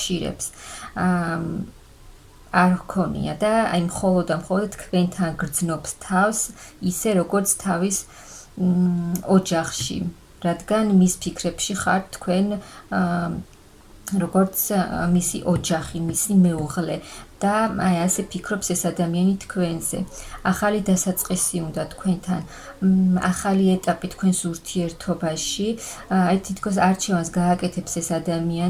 არ ჰქონია და აი მხოლოდ თქვენთან გრძნობს თავს, ისე როგორც თავის ოჯახში, რადგან მის ფიქრებში ხართ თქვენ როგორც მისი ოჯახი, მისი მეუღლე და აი ასე ფიქრობს ეს ადამიანი თქვენზე. ახალი დასაწყისი უნდა თქვენთან, ახალი ეტაპი თქვენს ურთიერთობაში, აი თითქოს არჩევანს გააკეთებს ეს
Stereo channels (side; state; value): both; identical; correlation 1.00